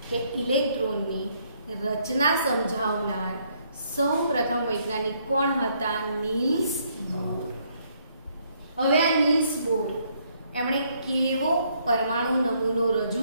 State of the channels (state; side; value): inverted; both; correlation -0.70